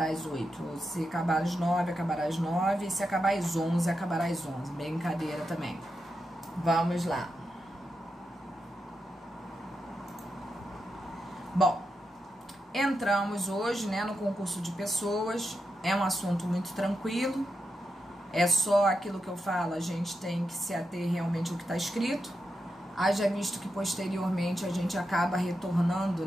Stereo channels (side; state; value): both; normal; correlation 0.87